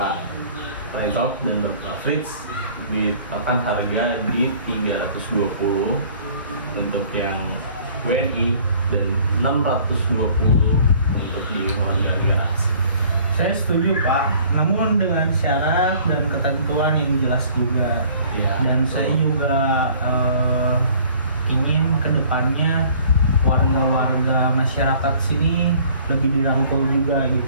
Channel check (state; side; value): inverted; both; correlation -0.53